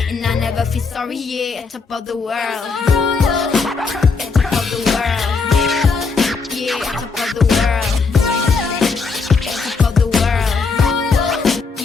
And I never feel sorry, yeah, top of the world. At top of the world. Yeah, at top of the world. At top of the world.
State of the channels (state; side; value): quieter; right; 4.7 dB